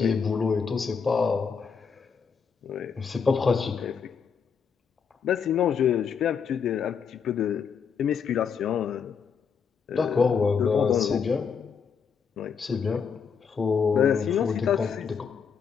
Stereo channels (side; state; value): right; quieter; 6.4 dB